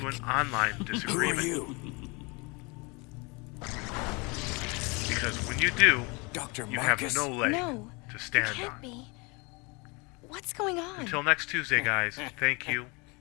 an online disagreement. Who are you? Because when you do, Dr. you have Marcus? no leg No, to it stand can't on. be. What's going on? Until next Tuesday, guys, thank you,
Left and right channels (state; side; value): quieter; right; 28.6 dB